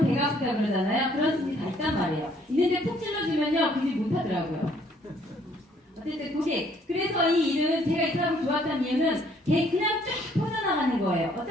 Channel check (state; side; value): normal; both; correlation 0.63